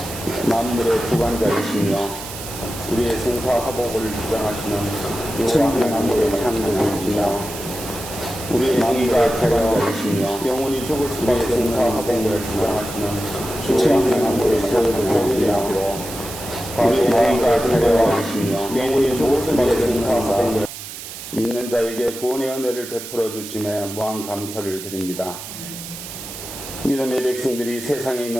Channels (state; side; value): noise; right; hiss, 11 dB below the sound